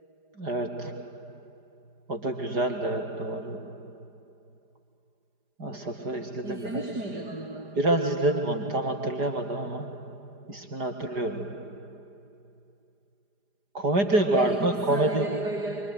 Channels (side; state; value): left; late; 4.9 ms